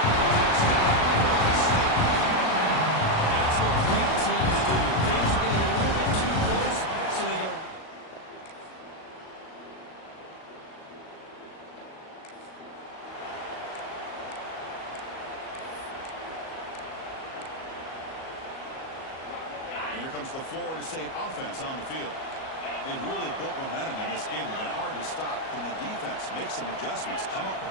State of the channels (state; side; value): late; right; 37 ms